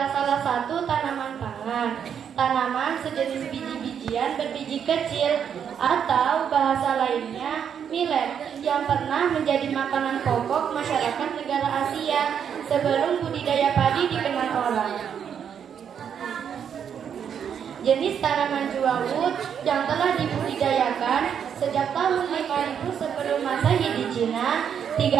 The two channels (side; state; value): left; quieter; 8.0 dB